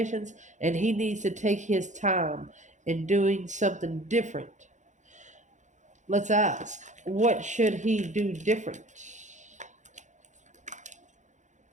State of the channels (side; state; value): left; late; 0.35 ms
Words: And he needs to take his time in doing something different. Let's ask, what should he do different?